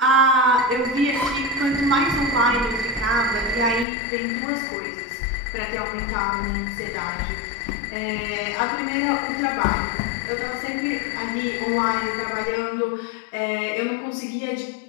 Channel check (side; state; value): right; drops out; at 3.9 s